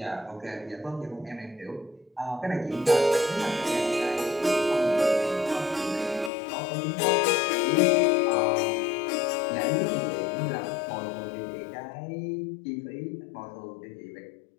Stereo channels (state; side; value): drops out; right; at 6.3 s